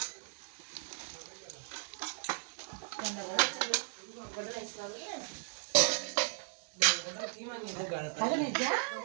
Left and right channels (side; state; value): left; silent; digital silence